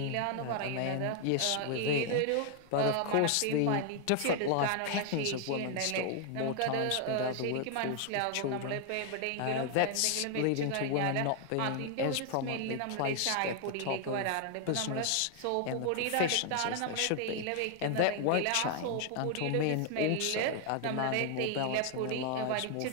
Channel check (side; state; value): both; different; correlation 0.00